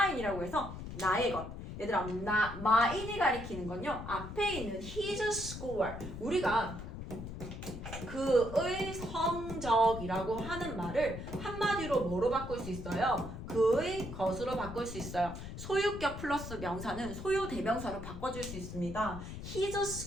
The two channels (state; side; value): noise; left; rumble, 9 dB below the sound